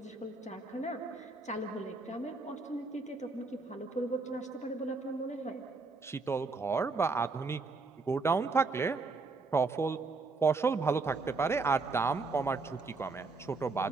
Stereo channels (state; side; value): quieter; left; 4.0 dB